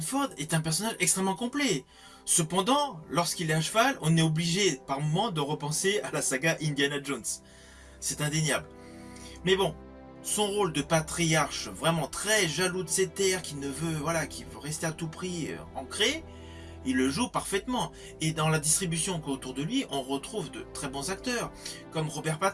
est un personnage extrêmement complet. Cependant, lorsqu'il est à cheval, on est obligé par moments de repenser à la saga Indiana Jones. C'est indéniable. Mais bon, son rôle de patriarche vraiment très jaloux de ses terres, qui veut rester à tout prix ancré, il le joue parfaitement. Et dans la distribution autour de lui, on retrouve de très bons acteurs, comme Robert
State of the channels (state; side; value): identical; both; correlation 1.00